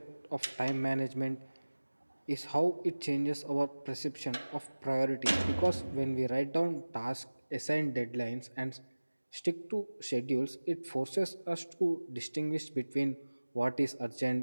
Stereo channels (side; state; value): both; inverted; correlation -1.00